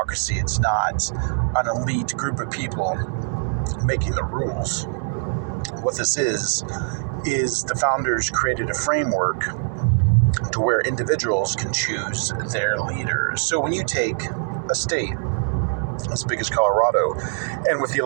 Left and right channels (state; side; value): silent; left; digital silence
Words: It's not an elite group of people making the rules. What this is the founders created a framework to where individuals can choose their leaders. So when you take a state as big as Colorado, and with the